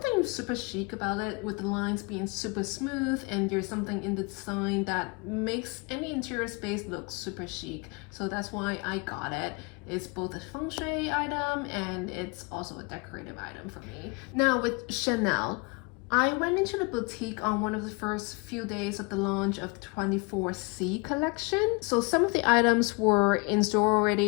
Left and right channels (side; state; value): right; quieter; 29.1 dB